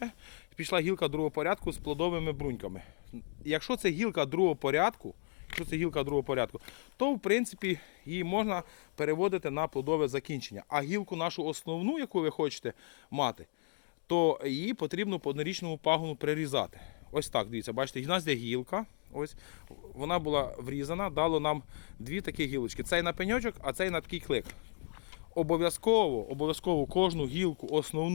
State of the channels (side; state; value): right; silent; 55 dB below the other